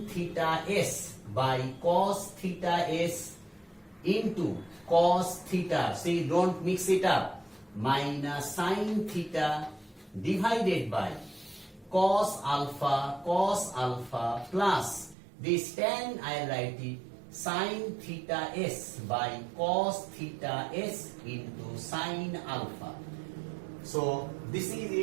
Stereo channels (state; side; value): drops out; left; at 15.2 s